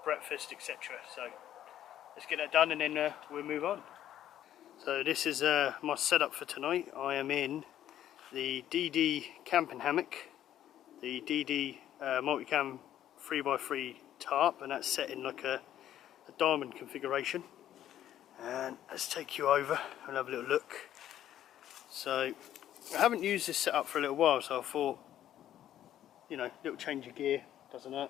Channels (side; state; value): right; quieter; 11.6 dB